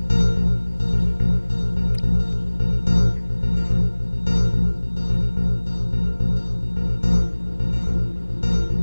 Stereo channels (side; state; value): both; inverted; correlation -1.00